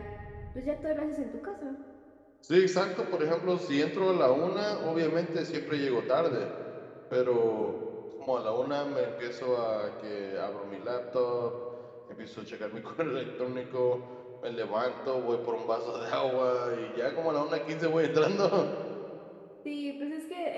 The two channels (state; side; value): identical; both; correlation 1.00